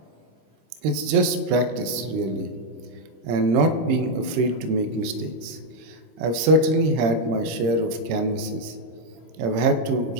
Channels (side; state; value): left; late; 26 ms